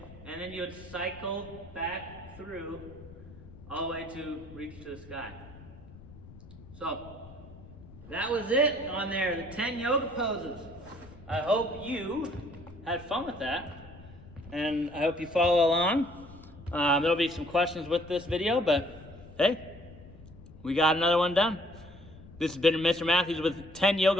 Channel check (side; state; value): left; noise; rumble, 18 dB below the sound